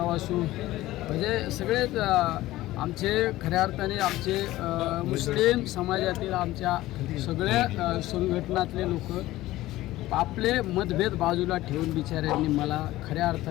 असू, म्हणजे सगळेच आमचे खऱ्या अर्थाने आमचे मुस्लिम समाजातील आमच्या सगळ्या संघटनातले लोक आपले मतभेद बाजूला ठेवून बिचाऱ्यांनी मला खऱ्या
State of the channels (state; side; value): quieter; right; 16.6 dB